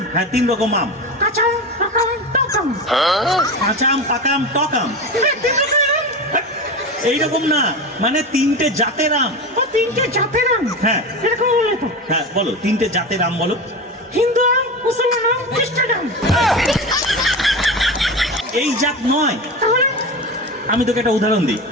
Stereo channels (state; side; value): normal; both; correlation 0.25